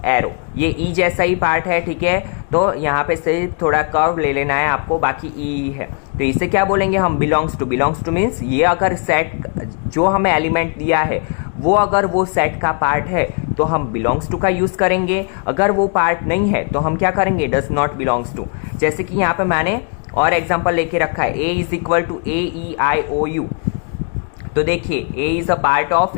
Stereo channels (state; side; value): quieter; right; 38.9 dB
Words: एरो, ये ई जैसा ही पार्ट है, ठीक है। तो यहाँ पे से थोड़ा कर्व ले लेना है आपको, बाकी ई है, तो इसे क्या बोलेंगे हम, belongs to. Belongs to means ये अगर सेट जो हमें एलिमेंट दिया है वो अगर वो सेट का पार्ट है तो हम बिलोंग्स टू का यूज करेंगे, अगर वो पार्ट नहीं है तो हम क्या करेंगे, डज नॉट बिलोंग्स टू। जैसे कि यहाँ पे मैंने और एग्जाम्पल लेके रखा है, A is equal to a e i o u, तो देखिए a is a part of